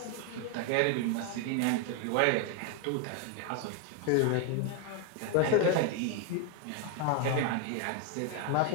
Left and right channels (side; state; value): both; different; correlation 0.00